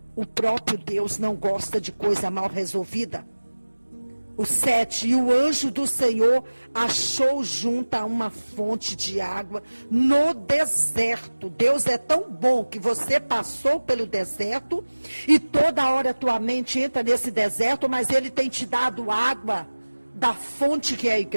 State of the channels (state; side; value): inverted; both; correlation -1.00